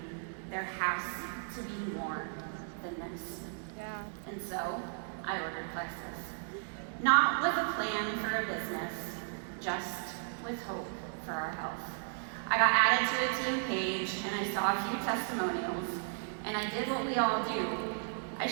there has to be more than this. Yeah. And so, I ordered Plexus. Not with a plan for a business, just with hope for our health. I got added to a team page and I saw a few testimonials, and I did what we all do. I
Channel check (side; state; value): left; silent; digital silence